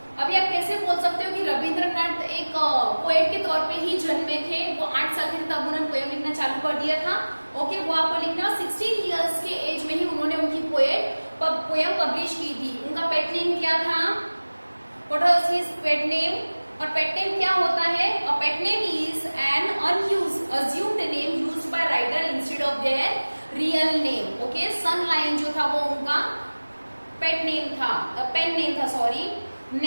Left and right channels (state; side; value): inverted; both; correlation -1.00